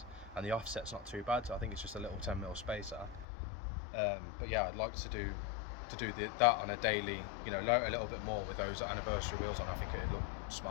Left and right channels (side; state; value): right; drops out; at 3.2 s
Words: and the offset's not too bad. So I think it's just a little 10mm spacer. But yeah, I'd like to do that on a daily, load a little bit more with those anniversary wheels on. I think it'd look